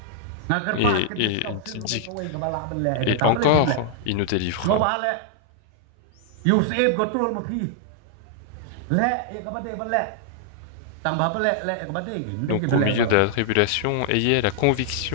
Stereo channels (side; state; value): both; different; correlation -0.01